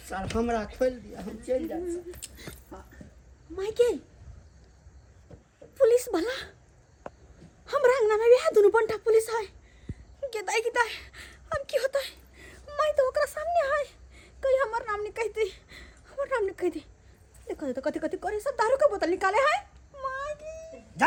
हमरा खोल दिया, हम चल जाए। माइके पुलिस भला हमरा अंगना में भी है, दोनों बंटा पुलिस है। किताई हम की होता है? मैं तो ओकरा सामने है, कहीं हमर नाम नहीं कहती, हमर नाम नहीं कहती। देखो तो कथी करे, सब दारू का बोतल निकाले है। मागी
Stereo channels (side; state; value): both; identical; correlation 1.00